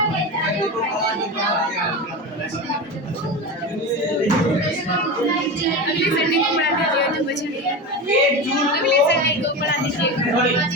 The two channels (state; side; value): normal; both; correlation 0.23